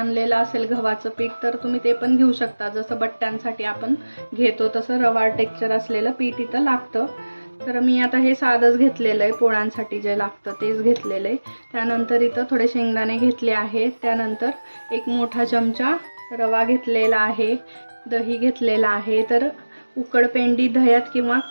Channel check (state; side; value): inverted; both; correlation -1.00